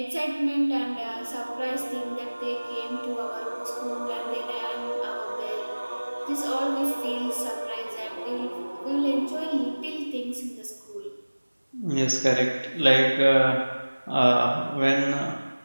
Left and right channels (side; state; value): both; inverted; correlation -1.00